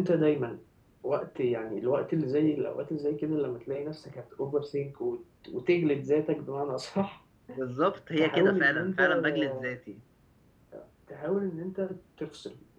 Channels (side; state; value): both; identical; correlation 1.00